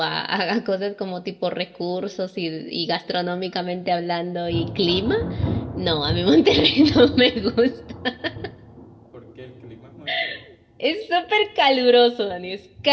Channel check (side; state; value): both; identical; correlation 1.00